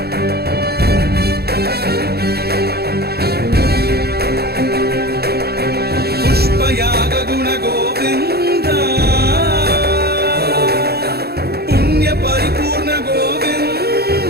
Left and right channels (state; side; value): late; left; 0.46 ms